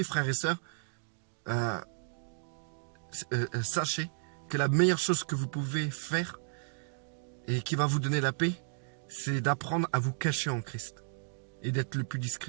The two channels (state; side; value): silent; left; digital silence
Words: frères et sœurs, sachez que la meilleure chose que vous pouvez faire et qui va vous donner la paix, c'est d'apprendre à vous cacher en Christ et d'être le plus